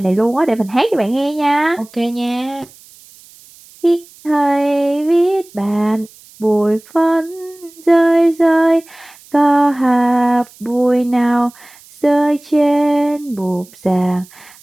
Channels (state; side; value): noise; right; hiss, 24 dB below the sound